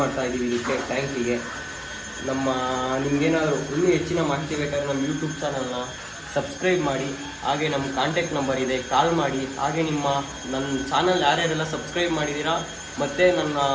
ಮಾಡ್ತಾ ಇದ್ದೀವಿ ಇದಕ್ಕೆ ಟ್ಯಾಂಕಿಗೆ. ನಿಮಗೇನಾದರೂ ಇನ್ನೂ ಹೆಚ್ಚಿನ ಮಾಹಿತಿ ಬೇಕಾದರೆ ನಮ್ಮ ಯೂಟ್ಯೂಬ್ ಚಾನಲ್ನ ಸಬ್ಸ್ಕ್ರೈಬ್ ಮಾಡಿ, ಹಾಗೆ ನಮ್ಮ ಕಾಂಟ್ಯಾಕ್ಟ್ ನಂಬರ್ ಇದೆ, ಕಾಲ್ ಮಾಡಿ. ಹಾಗೆ ನನ್ನ ಚಾನಲ್ ಯಾರ್ಯಾರೆಲ್ಲ ಸಬ್ಸ್ಕ್ರೈಬ್ ಮಾಡಿದ್ದೀರಾ ಮತ್ತು ನನ್ನ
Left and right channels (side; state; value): both; identical; correlation 1.00